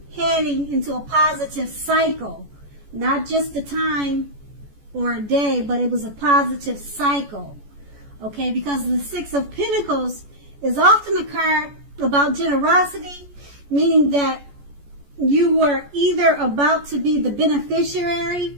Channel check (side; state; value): left; late; 14 ms